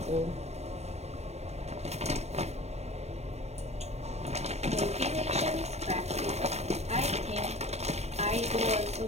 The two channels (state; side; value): late; left; 0.31 ms